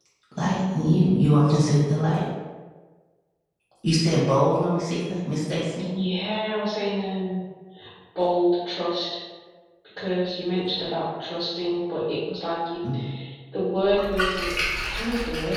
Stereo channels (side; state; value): both; identical; correlation 1.00